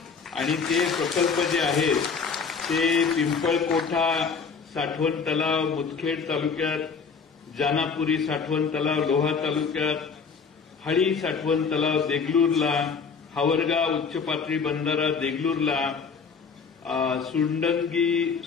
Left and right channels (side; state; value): right; quieter; 5.5 dB